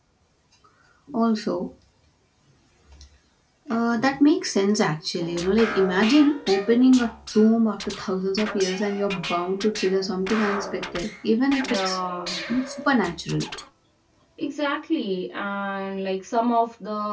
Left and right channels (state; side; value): identical; both; correlation 1.00